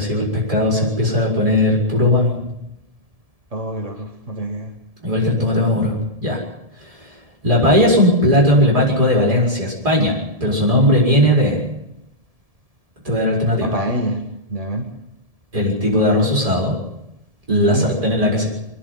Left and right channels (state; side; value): late; left; 1.7 ms